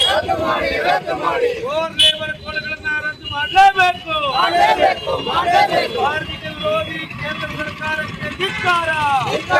ಫೋರ್ ಲೇಬರ್ ಕೋಡ್ಗಳನ್ನು ರದ್ದು ಮಾಡಲೇಬೇಕು. ಕಾರ್ಮಿಕ ವಿರೋಧಿ ಕೇಂದ್ರ ಸರ್ಕಾರಕ್ಕೆ ಧಿಕ್ಕಾರ.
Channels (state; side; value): identical; both; correlation 1.00